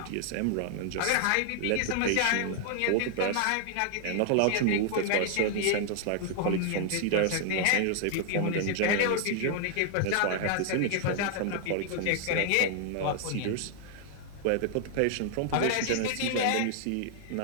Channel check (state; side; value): different; both; correlation 0.00